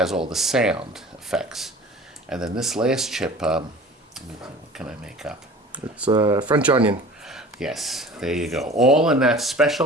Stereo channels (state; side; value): normal; both; correlation 0.42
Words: all the sound effects. And then this last chip, what can I make up? It's French onion. Yes, there you go. All in that